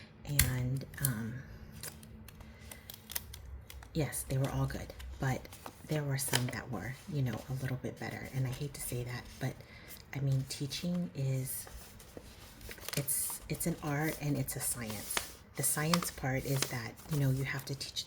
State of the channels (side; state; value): both; identical; correlation 1.00